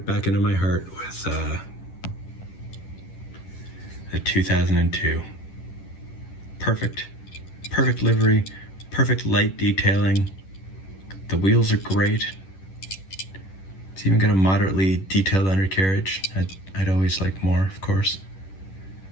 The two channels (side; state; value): right; late; 10 ms